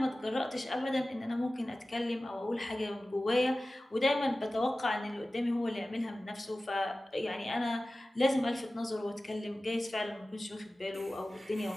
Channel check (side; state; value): both; normal; correlation 0.96